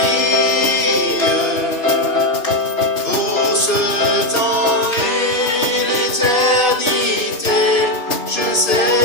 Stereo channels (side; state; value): right; late; 2.5 ms